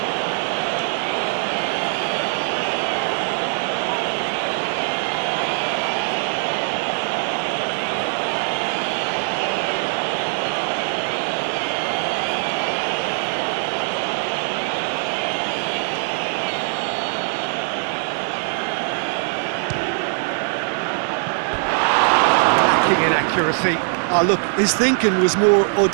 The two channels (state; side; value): silent; left; 57 dB below the other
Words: In accuracy. Oh, look, his thinking was more